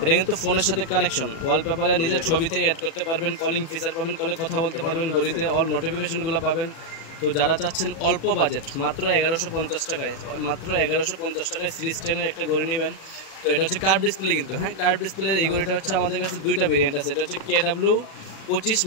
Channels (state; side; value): late; right; 37 ms